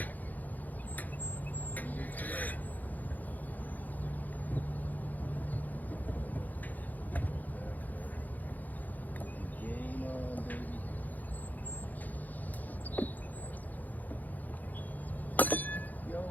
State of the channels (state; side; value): late; right; 0.082 ms